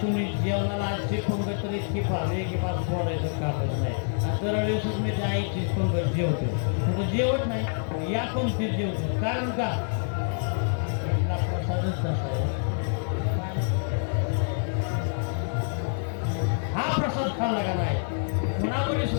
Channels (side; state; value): right; silent; 60 dB below the other